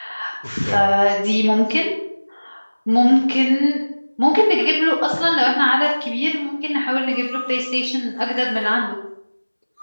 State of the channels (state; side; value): inverted; both; correlation -1.00